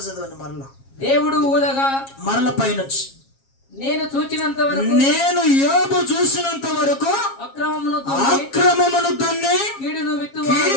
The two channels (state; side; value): late; right; 7.4 ms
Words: చదవండి మరలా. దేవుడు ఊదగా మరల పైనొచ్చి నేను చూచినంత వరకు నేను యోబు చూసినంత వరకు అక్రమమును దున్ని కీడును విత్తువారు